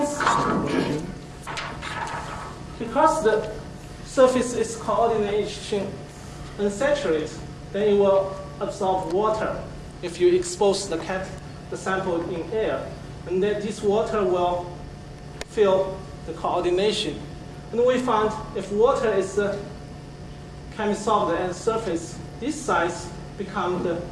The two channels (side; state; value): both; identical; correlation 1.00